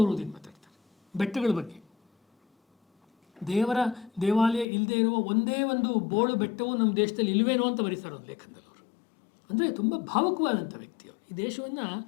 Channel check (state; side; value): drops out; right; at 4.7 s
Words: ಮಾತಾಡ್ತಾರೆ. ಬೆಟ್ಟಗಳ ಬಗ್ಗೆ, ದೇವಾಲಯ ಇಲ್ಲದೆ ಇರುವ ಒಂದೇ ಒಂದು ಬೋಳು ಬೆಟ್ಟವು ನಮ್ಮ ದೇಶದಲ್ಲಿ ಇಲ್ವೇನೋ ಅಂತ ಬರೀತಾರೆ ಒಂದು ಲೇಖನದಲ್ಲಿ ಅವರು. ಅಂದರೆ ತುಂಬ ಭಾವುಕವಾದಂಥ ವ್ಯಕ್ತಿಯವರು. ಈ ದೇಶವನ್ನು